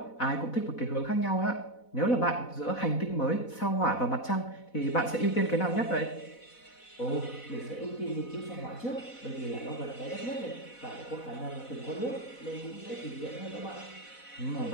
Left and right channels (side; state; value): right; late; 4.0 ms